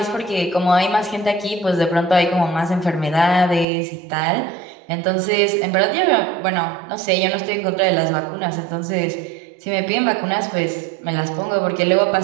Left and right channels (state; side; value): drops out; left; at 3.7 s